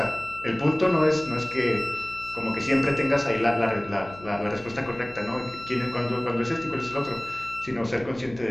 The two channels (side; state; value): left; noise; hum, 19 dB below the sound